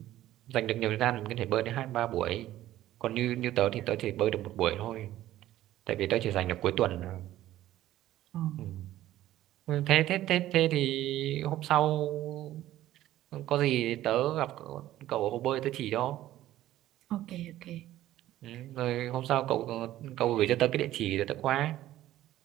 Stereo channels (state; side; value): quieter; left; 14.0 dB